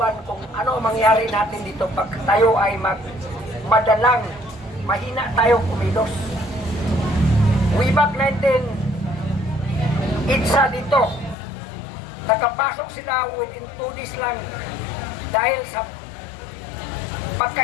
kung ano ang mangyari natin dito pag tayo ay madalang mahina tayo kumilos. Way back 19 itsa dito nakapasok sila within 2 days lang dahil sa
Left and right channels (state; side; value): drops out; right; at 11.4 s